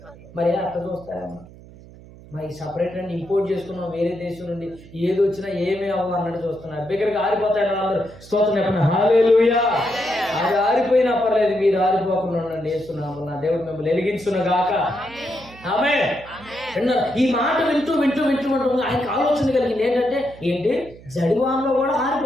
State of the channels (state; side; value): noise; right; hum, 20 dB below the sound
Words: మరి అట్లా చూస్తారమ్మా. మరి సపరేట్ అండి ఇంపోర్ట్ చేసుకున్నాం వేరే దేశం నుండి, ఏది వచ్చినా ఏమీ అవ్వ అన్నట్టు చూస్తున్నారు. దగ్గరికి ఆరిపోతాయని వాళ్ళందరూ స్తోత్రం చెప్పండి. హల్లెలూయా. అది ఆరిపోయినా పర్లేదు, మీరు ఆరిపోకుండా ఉండండి. వేస్తున్నాము, నా దేవుడు మిమ్మల్ని వెలిగించును గాక. ఆమేన్. విన్నారు? ఈ మాట వింటూ ఆయనకు ఆలోచన కలిగింది ఏంటి, జడివానలో కూడా